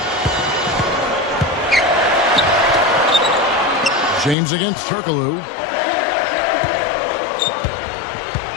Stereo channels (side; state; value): right; drops out; at 4.4 s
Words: James against Turkoglu.